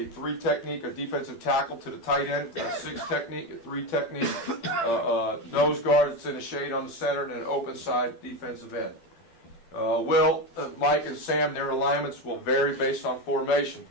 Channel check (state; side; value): late; right; 12 ms